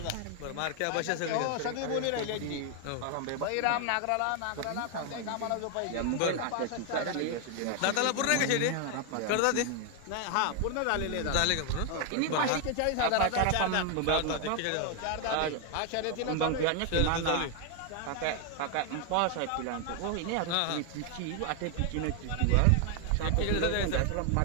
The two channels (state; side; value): different; both; correlation 0.00